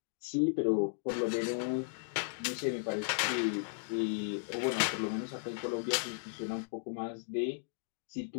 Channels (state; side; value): silent; right; digital silence